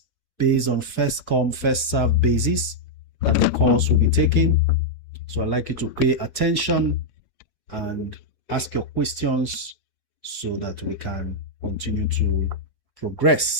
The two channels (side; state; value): both; normal; correlation -0.04